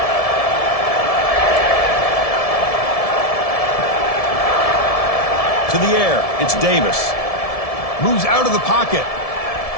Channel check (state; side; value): late; right; 1.7 ms